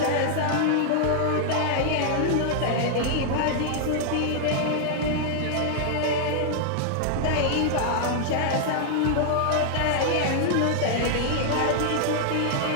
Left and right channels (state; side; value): different; both; correlation -0.01